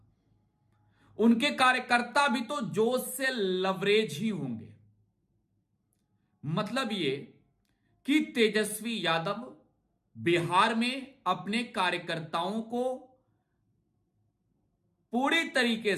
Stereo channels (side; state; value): both; identical; correlation 1.00